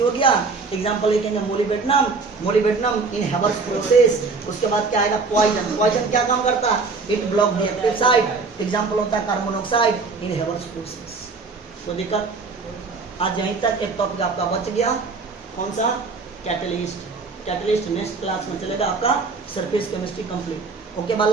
हो गया। एग्जांपल लिखेंगे मोलिबेडनम, मोलिबेडनम इन हेवर्स प्रोसेस। उसके बाद क्या आएगा? पॉइजन। पॉइजन क्या काम करता है? It block the active site. Example होता है कार्बन मोनोऑक्साइड इन हेवर्स प्रोसेस। तो दिक्कत आज यहीं तक एक टॉपिक आपका बच गया। कौन सा? कैटलिस्ट। कैटलिस्ट नेक्स्ट क्लास में चलेगा आपका सरफेस केमिस्ट्री कंप्लीट। ओके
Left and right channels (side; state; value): left; quieter; 4.3 dB